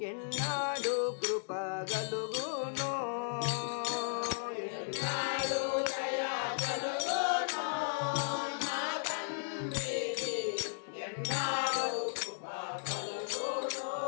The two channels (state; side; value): silent; right; digital silence